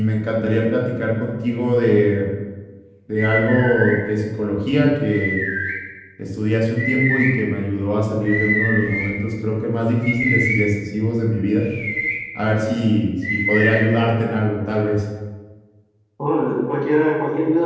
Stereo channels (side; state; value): both; identical; correlation 1.00